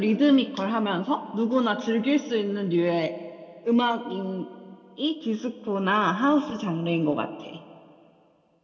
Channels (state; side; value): identical; both; correlation 1.00